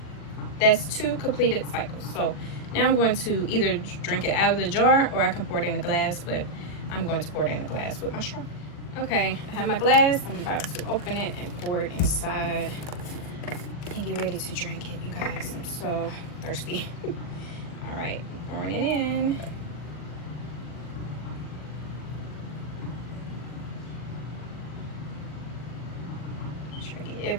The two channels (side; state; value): right; late; 40 ms